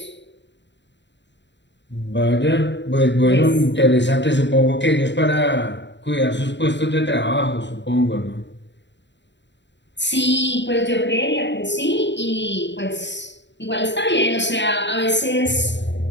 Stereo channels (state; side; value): late; right; 0.52 ms